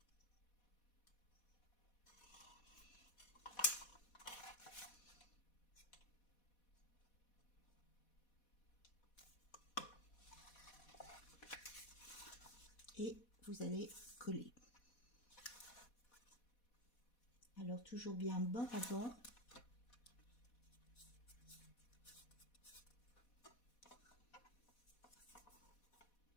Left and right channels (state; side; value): late; right; 4.1 ms